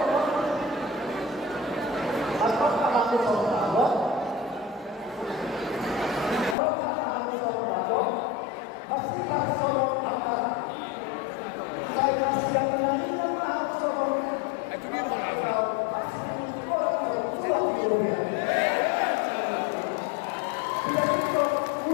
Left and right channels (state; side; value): drops out; right; at 6.6 s